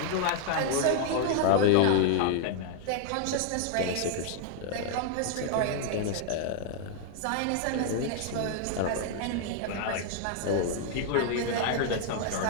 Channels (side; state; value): both; different; correlation 0.00